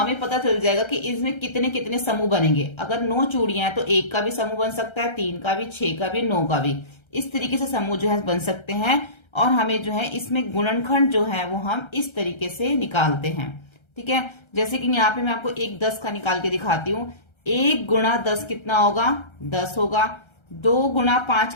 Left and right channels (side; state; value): right; late; 1.3 ms